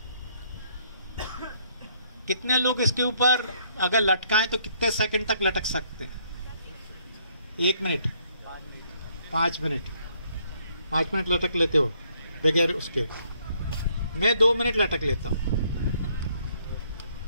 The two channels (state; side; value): inverted; both; correlation -0.68